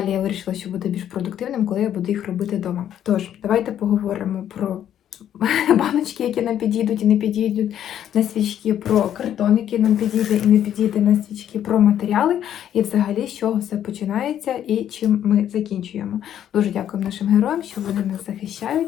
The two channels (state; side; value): quieter; right; 10.4 dB